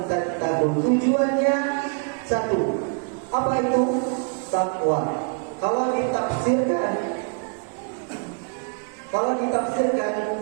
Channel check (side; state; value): left; quieter; 39.2 dB